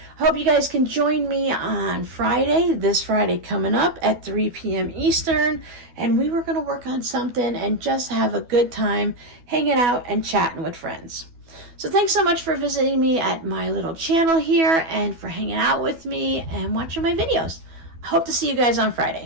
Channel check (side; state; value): left; late; 12 ms